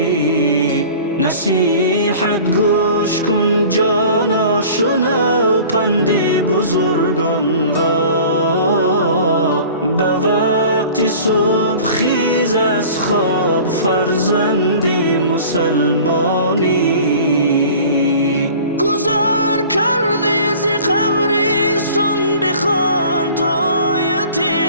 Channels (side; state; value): both; inverted; correlation -0.44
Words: نصیحت گوش کن جانا، شنو پندی بزرگان را. به وقت صبح خیز از خواب فرزندی مسلمانی. گذار کردی ز قبرستان، بخوان تو آیت